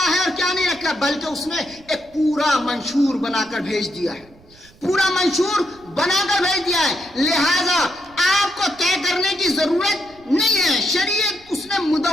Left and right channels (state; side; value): noise; right; rumble, 26 dB below the sound